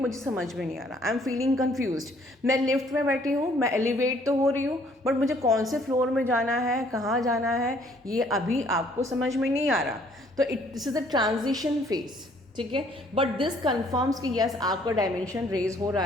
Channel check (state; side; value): normal; both; correlation 0.62